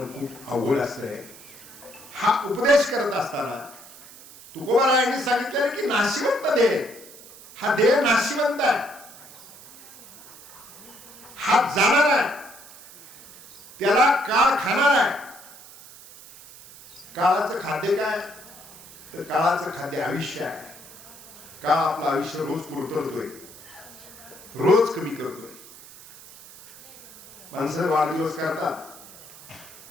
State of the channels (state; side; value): noise; right; hiss, 19 dB below the sound